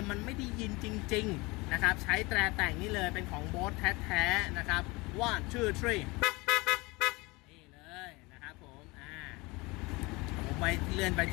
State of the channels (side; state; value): right; quieter; 24.4 dB